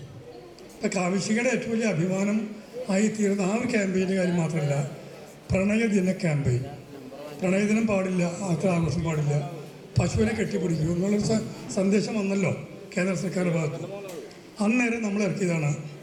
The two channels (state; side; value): identical; both; correlation 1.00